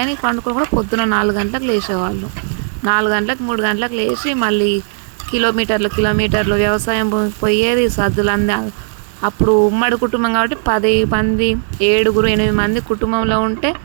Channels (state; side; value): silent; left; 63 dB below the other